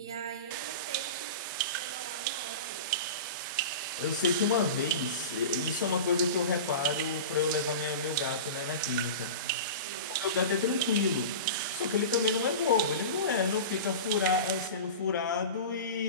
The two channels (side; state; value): both; inverted; correlation -0.31